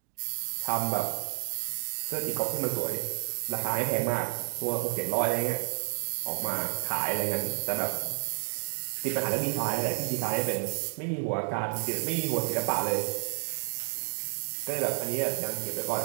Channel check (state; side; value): silent; left; digital silence